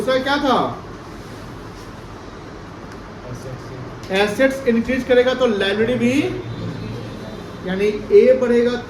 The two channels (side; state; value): both; identical; correlation 1.00